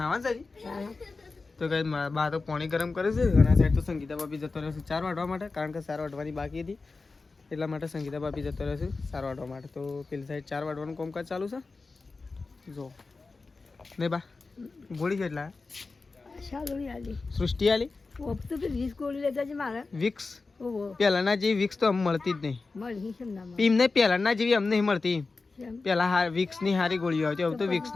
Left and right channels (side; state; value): right; quieter; 3.9 dB